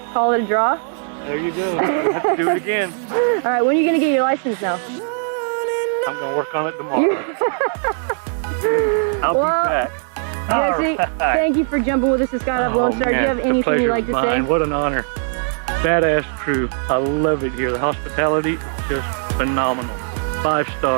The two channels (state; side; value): silent; left; digital silence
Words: call it a draw. There you go. We'll have to do it again. All right, when are you going to get your license now? I'm going to work on it tomorrow. I'll be back. Jesse, thank you for jumping with us at Skydive Lone Star. Do you have anything you'd like to say? What an honor. Badass crew. I love it here. The hospitality, just phenomenal. 5